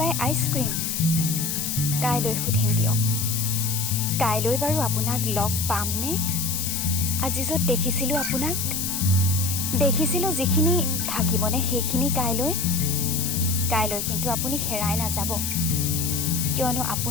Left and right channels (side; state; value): left; noise; hiss, 2 dB below the sound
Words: আইচক্ৰীম? কাইলৈ সুধিম দিয়ক। কাইলৈ বাৰু আপোনাক লগ পামনে? আজি য'ত দেখিছিলোঁ আপোনাক, দেখিছিলোঁ যিখিনি, থাকিবনে সেইখিনি কাইলৈ? কাইলৈ কিন্তু আপুনি হেৰাই নাযাব, কিয়নো